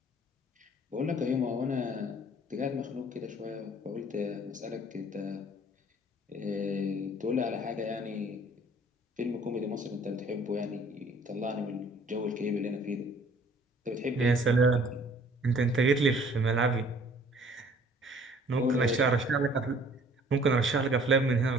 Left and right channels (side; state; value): both; normal; correlation 0.55